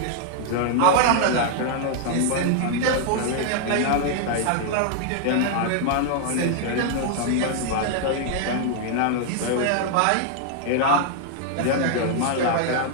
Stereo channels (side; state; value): both; different; correlation -0.01